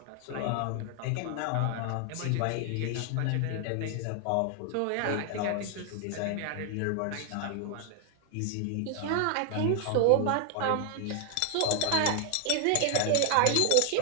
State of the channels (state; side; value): different; both; correlation 0.00